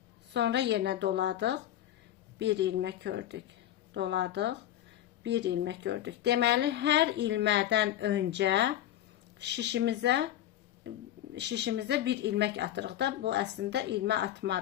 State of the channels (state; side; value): quieter; right; 12.4 dB